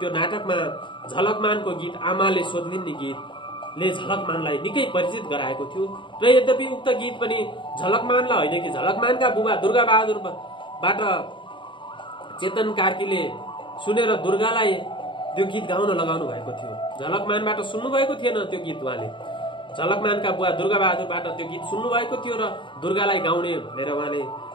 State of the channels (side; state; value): right; late; 0.24 ms